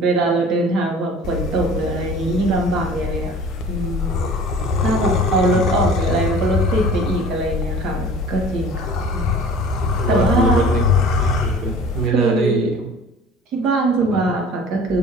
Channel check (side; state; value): both; normal; correlation 0.44